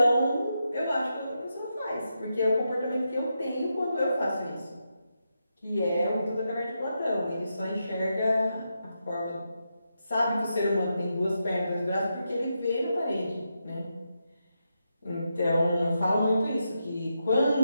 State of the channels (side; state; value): both; inverted; correlation -0.85